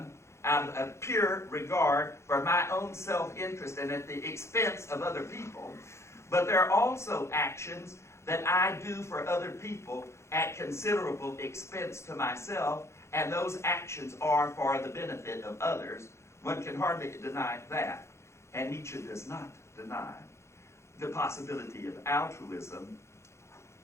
out of pure regard for my own self-interest and at the expense of other people. But there are also actions that I do for other people at considerable expense to myself, and those actions are for the benefit of others. One can hardly deny that. And Nietzsche does not deny the possibility of altruism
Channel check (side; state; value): right; late; 0.13 ms